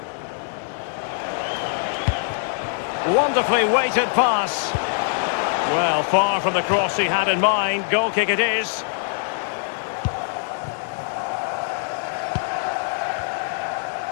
Wonderfully weighted pass. Well, far from the cross he had in mind. Goal kick it is.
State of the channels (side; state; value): right; silent; digital silence